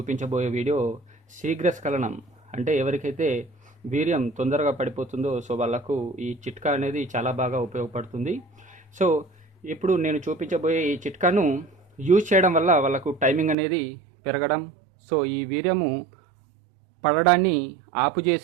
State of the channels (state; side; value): drops out; left; at 13.6 s